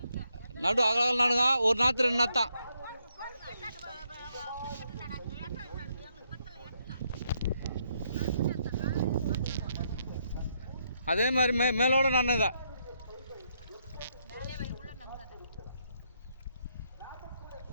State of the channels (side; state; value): both; inverted; correlation -0.76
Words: நடு அகலம் நடுங்க. ஒரு நாற்று 2 நாத்தான். அதே மாதிரி மேலோட நான் இதை